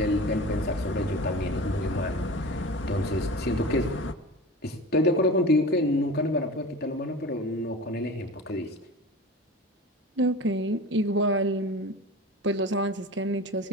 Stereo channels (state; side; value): normal; both; correlation 0.34